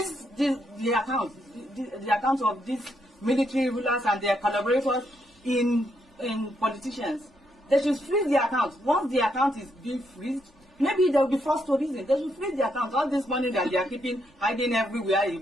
the accounts of these military rulers and their collaborators in politicians. They should freeze the accounts. Once the account is being freezed, maybe they will be forced to reason. They should freeze the accounts. All this money that they are keeping, hiding everywhere,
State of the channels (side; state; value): both; normal; correlation 0.77